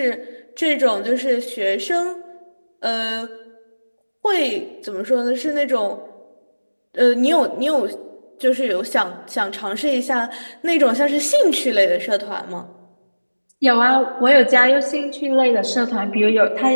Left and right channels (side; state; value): both; inverted; correlation -1.00